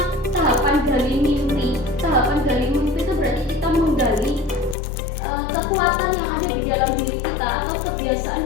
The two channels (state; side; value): drops out; right; at 4.8 s